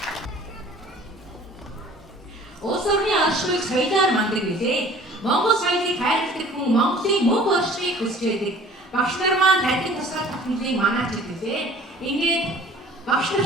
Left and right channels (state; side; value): normal; both; correlation 0.49